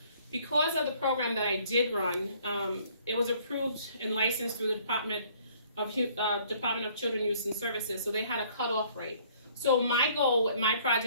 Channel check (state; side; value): inverted; both; correlation -0.59